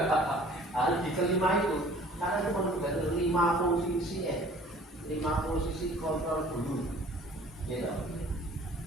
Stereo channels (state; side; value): normal; both; correlation 0.51